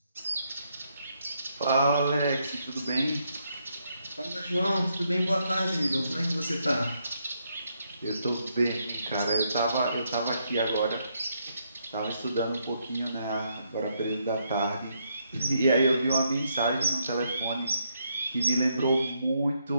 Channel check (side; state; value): both; inverted; correlation -0.76